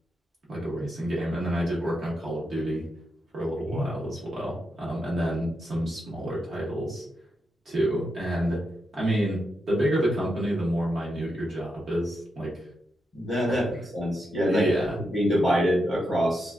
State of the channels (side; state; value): both; normal; correlation 0.85